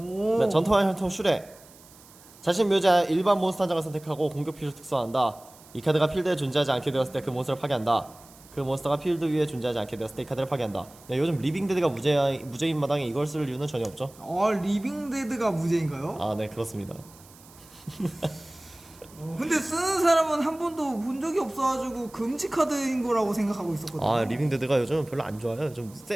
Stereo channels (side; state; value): right; noise; hiss, 24 dB below the sound